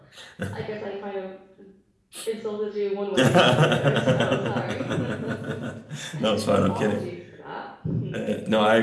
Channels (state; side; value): identical; both; correlation 1.00